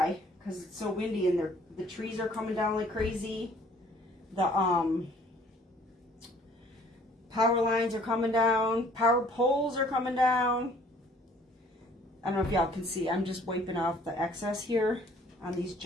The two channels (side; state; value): both; normal; correlation 0.57